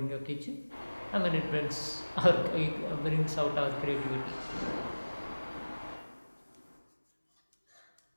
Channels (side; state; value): both; inverted; correlation -1.00